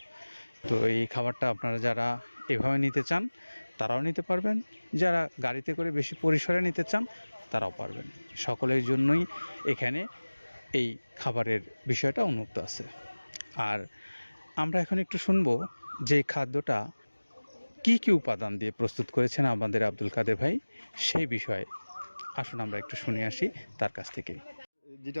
তো এই খাবারটা আপনারা যারা এভাবে নিতে চান তারাও নিতে পারবেন, যারা গাড়িতে করে বেশি পরিসরে নিতে চান তারাও পারবেন। সকলের জন্যই এখানে এই খাবারের বিষয়টা উন্মুক্ত আছে। আর আমরা এখন একটু শুনবো যে খাদ্যটা কি কি উপাদান দিয়ে প্রস্তুত করেছেন আমাদের আব্দুল কাদের ভাই, সেই বিষয়ে আসুন আমরা একটু শুনে আসি তার কাছ থেকে।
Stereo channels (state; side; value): inverted; both; correlation -1.00